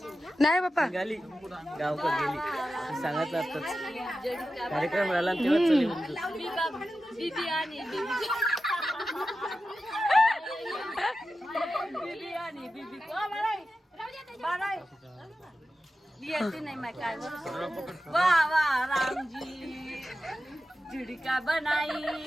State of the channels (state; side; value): normal; both; correlation 0.92